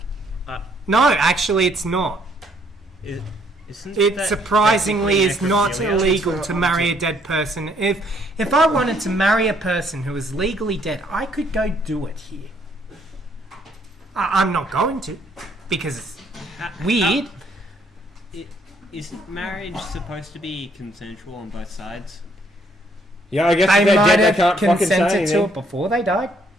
No, actually, it's not. isn't It that surprisingly is technically not necrophilia? illegal to marry a dead person. If I wanted to marry a person who is legally dead, I could go do it here. I'm not going to, because it's weird. Isn't marriage supposed to be consensual on both sides? Yeah, I guess They if they're might dead, they have can't fucking say consented to anything. it before they died.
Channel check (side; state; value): both; normal; correlation 0.67